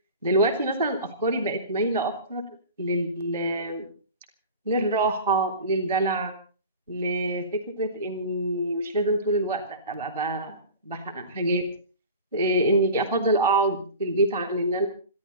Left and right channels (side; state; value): both; inverted; correlation -0.36